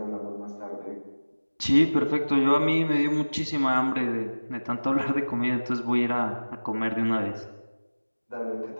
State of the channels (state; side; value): inverted; both; correlation -1.00